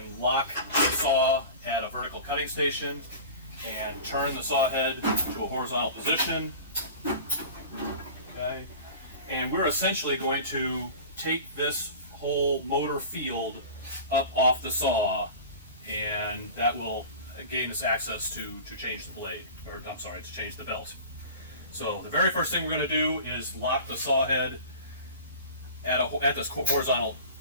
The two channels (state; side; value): inverted; both; correlation -0.37